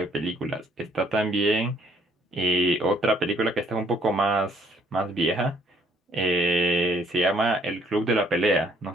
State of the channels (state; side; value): normal; both; correlation 0.65